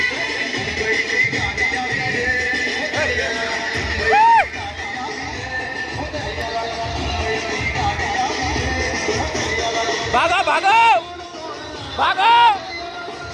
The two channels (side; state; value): both; identical; correlation 1.00